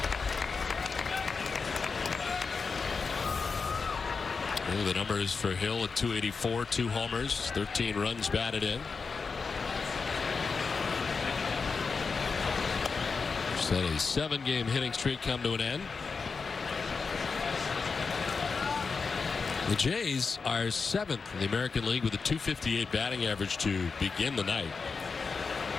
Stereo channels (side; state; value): right; quieter; 4.9 dB